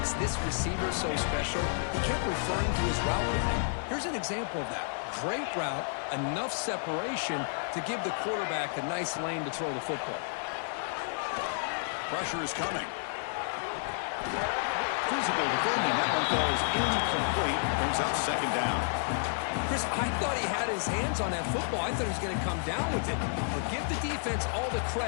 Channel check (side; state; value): right; silent; 57 dB below the other